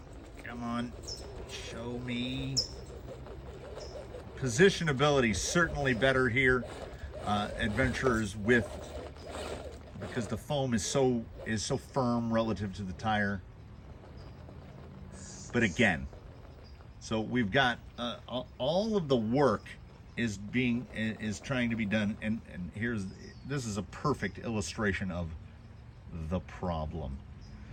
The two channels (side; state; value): both; identical; correlation 1.00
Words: come on, show me. Positionability certainly better here. Adventurers because the foam is so firm relative to the tire. But again, so we've got all of the work is trying to be done, and this is a perfect illustration of the problem.